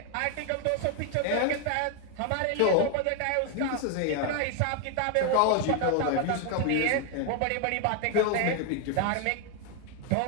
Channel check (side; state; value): both; different; correlation 0.00